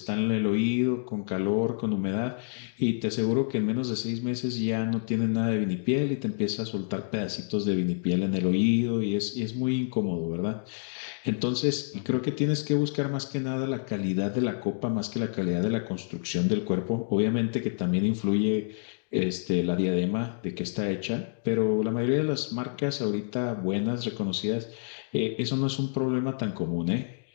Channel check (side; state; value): right; silent; digital silence